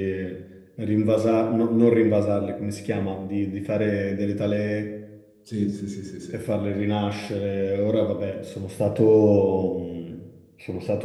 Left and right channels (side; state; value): both; identical; correlation 1.00